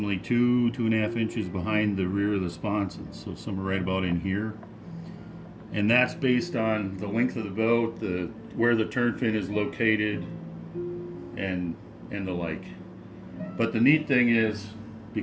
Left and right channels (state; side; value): identical; both; correlation 1.00